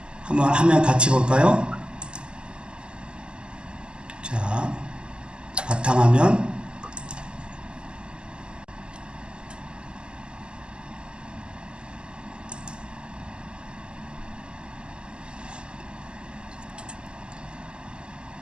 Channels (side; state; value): left; late; 0.048 ms